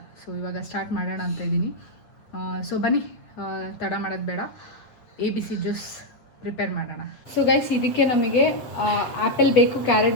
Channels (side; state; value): right; late; 7.9 ms